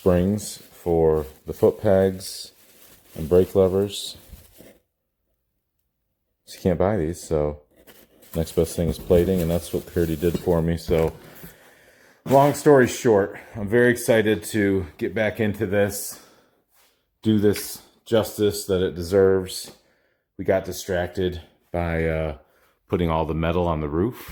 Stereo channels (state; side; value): identical; both; correlation 1.00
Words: for the foot pegs and brake levers. So you can't buy these, so next best thing is plating, and that's what Curdy did for me. So long story short, I'm very excited to get back into this, do this justice that it deserves. We got distracted by putting all the metal on the